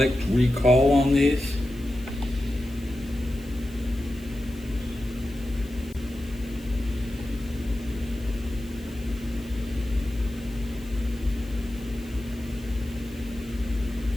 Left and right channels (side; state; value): left; noise; hiss, 23 dB below the sound